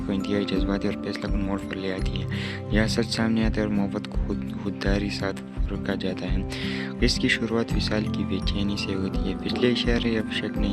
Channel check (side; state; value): both; identical; correlation 1.00